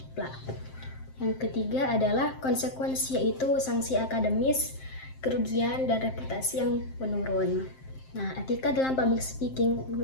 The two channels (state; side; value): late; right; 7.6 ms